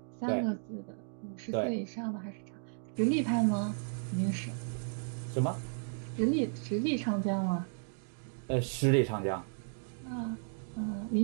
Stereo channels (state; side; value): silent; left; digital silence